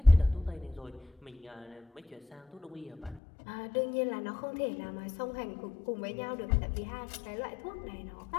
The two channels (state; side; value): drops out; right; at 3.2 s